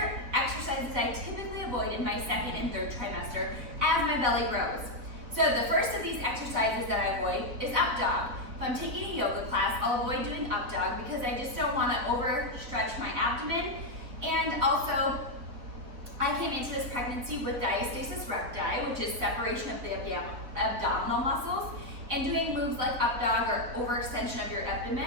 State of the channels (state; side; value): late; left; 4.2 ms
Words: exercises I typically avoid in my 2nd and 3rd trimester as my belly grows. So the first of these exercises that I avoid is up dog. If I'm taking a yoga class, I'll avoid doing up dog because I just don't want to overstretch my abdomen. And also, I came into this pregnancy with Diastasis Recti, which is separation of the abdominal muscles. And doing moves like up dog or overextension of your